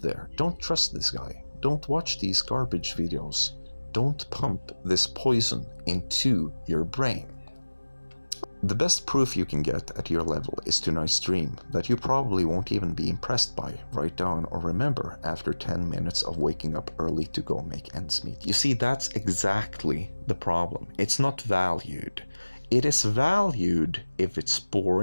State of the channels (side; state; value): both; inverted; correlation -1.00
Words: there, don't trust this guy. Don't watch these garbage videos. Don't pump this poison into your brain. The best proof you can get at your level is tonight's dream that you probably won't even be impressed by, write down, or remember after 10 minutes of waking up early to go make ends meet. You see, that's exactly the problem. It's not valued. It is valued if it's